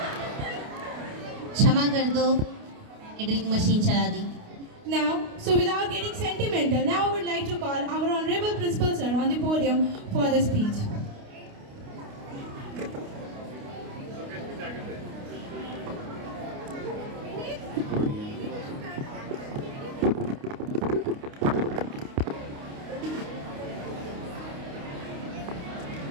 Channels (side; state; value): left; late; 29 ms